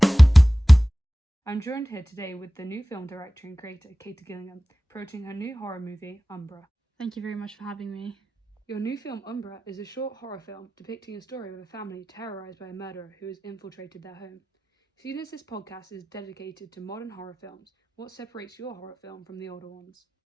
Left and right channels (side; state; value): both; normal; correlation 0.96